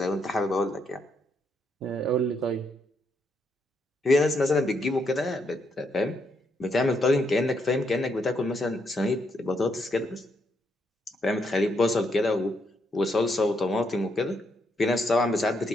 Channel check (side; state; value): both; normal; correlation 0.76